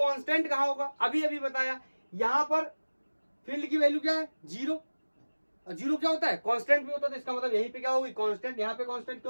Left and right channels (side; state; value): both; inverted; correlation -1.00